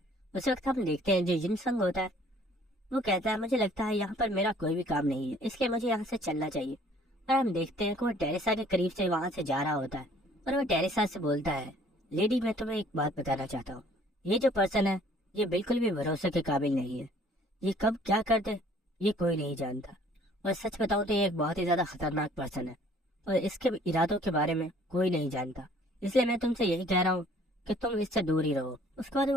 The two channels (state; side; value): normal; both; correlation 0.56